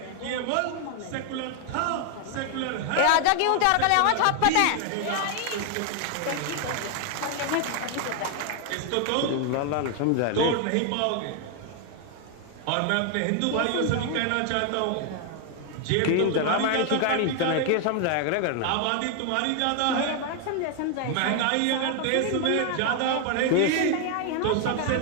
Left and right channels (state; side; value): different; both; correlation 0.00